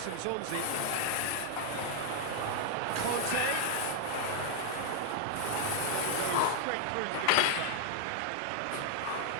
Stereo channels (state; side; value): different; both; correlation 0.00